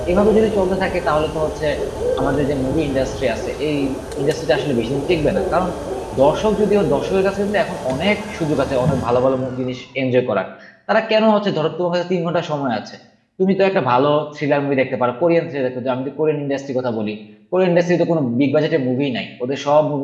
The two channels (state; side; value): identical; both; correlation 1.00